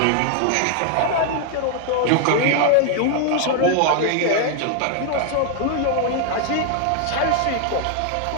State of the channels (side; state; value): both; different; correlation 0.00